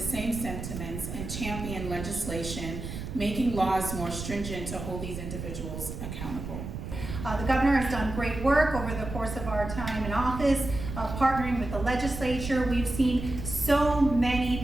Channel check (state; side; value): noise; right; rumble, 7 dB below the sound